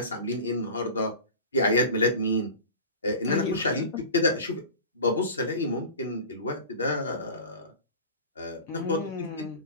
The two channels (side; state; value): both; inverted; correlation -0.36